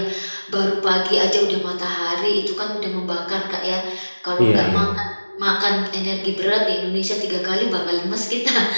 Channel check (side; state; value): both; inverted; correlation -1.00